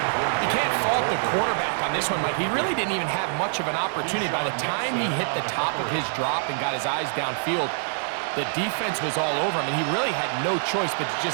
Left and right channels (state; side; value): silent; left; digital silence